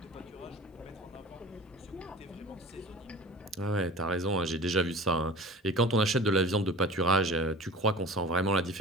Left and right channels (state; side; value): normal; both; correlation 0.40